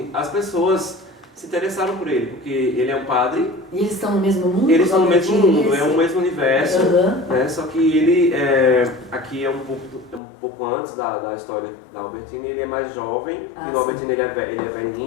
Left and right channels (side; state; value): right; drops out; at 10.2 s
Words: as pessoas se interessaram por ele, porque ele é um padre. E eles estão no mesmo mundo? Eles estão no mesmo mundo, é o mesmo universo, né? Só que ele aqui é um pouco antes da história da Albertini, ele é mais jovem, e no Albertini ele é